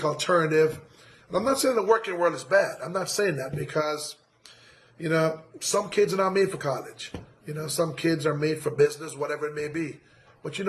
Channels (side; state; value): both; identical; correlation 1.00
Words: alternative. And I'm not saying the working world is bad. I'm not saying that because, some kids are not made for college. Some kids are made for business, whatever it may be. But you